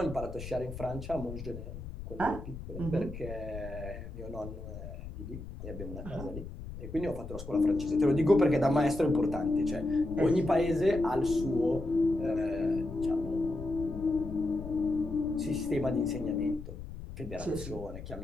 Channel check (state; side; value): noise; left; rumble, 10 dB below the sound